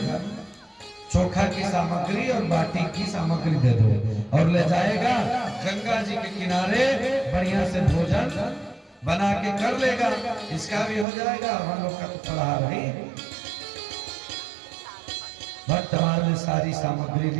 चोखा की सामग्री और बाटी की सामग्री दे दो और ले जाएगा गंगा जी के किनारे बढ़िया से भोजन बना के कर लेगा, इसका भी हो जाएगा और हम लोग का तो फलाहार ही। भक्तमाल ने सारी सामग्री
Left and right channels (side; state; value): left; drops out; at 11.1 s